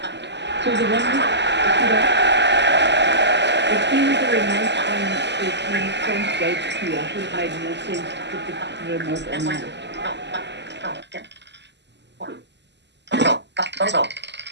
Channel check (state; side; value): late; left; 0.51 ms